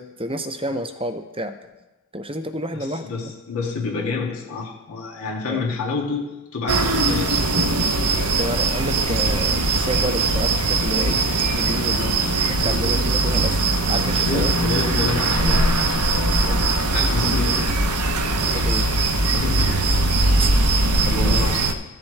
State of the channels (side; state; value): both; normal; correlation 0.39